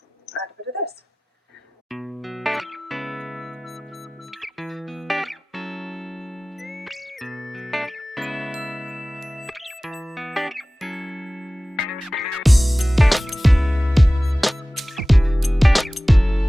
a bit of this.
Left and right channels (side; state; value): both; normal; correlation 0.97